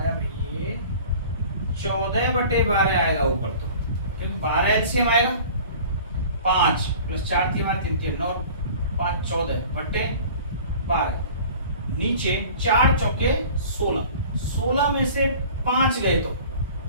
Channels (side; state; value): both; inverted; correlation -0.44